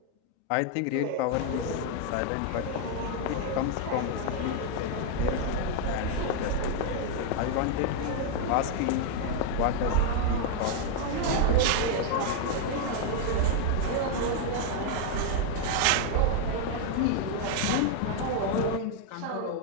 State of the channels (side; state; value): both; different; correlation 0.00